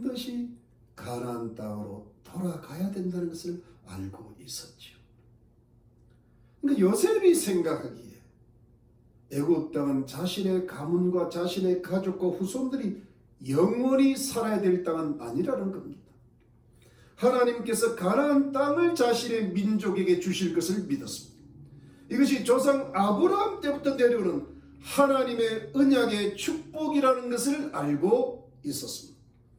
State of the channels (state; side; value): identical; both; correlation 1.00